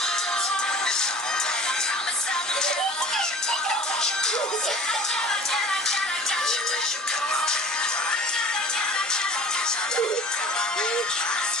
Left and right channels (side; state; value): both; normal; correlation 0.45